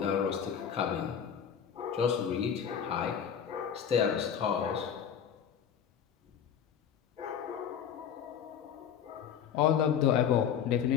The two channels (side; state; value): right; quieter; 8.3 dB